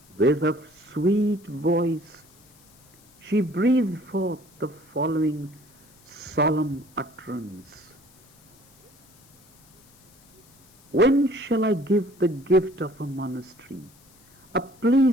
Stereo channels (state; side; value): noise; left; hiss, 29 dB below the sound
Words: with a sweet voice, she breathed forth the following solemn utterance. When shall I give the gift of a monastery, a